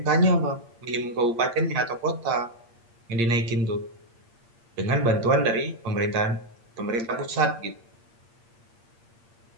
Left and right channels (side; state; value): left; late; 8.6 ms